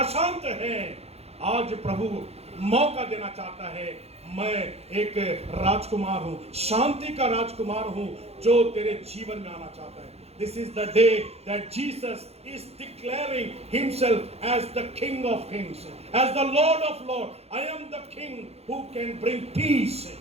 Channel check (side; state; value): left; late; 0.30 ms